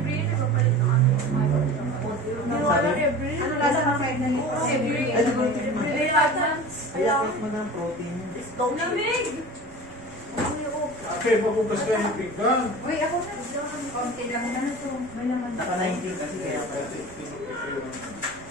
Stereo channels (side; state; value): left; noise; rumble, 23 dB below the sound